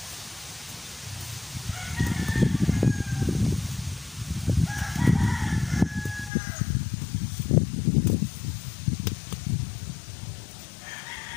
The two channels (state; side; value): drops out; right; at 6.3 s